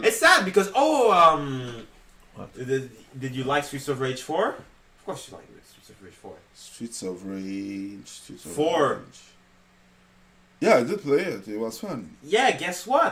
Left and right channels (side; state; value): both; identical; correlation 1.00